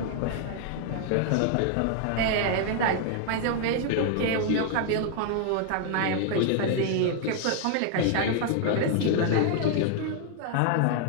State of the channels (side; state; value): both; different; correlation 0.00